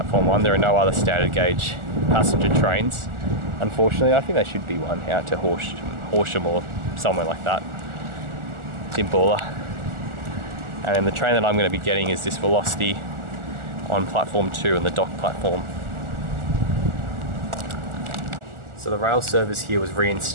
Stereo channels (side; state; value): left; late; 1.4 ms